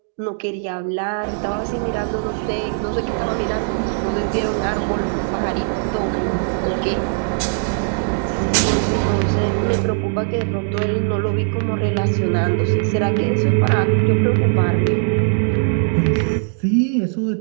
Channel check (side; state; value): left; silent; digital silence